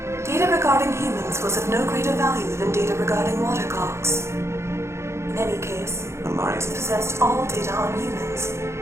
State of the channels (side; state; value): left; late; 0.13 ms